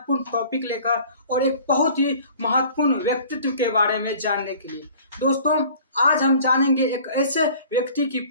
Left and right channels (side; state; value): both; inverted; correlation -0.48